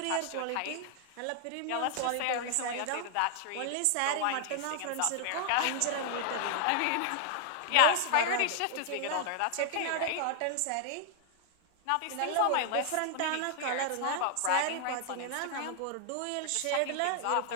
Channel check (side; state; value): both; different; correlation 0.00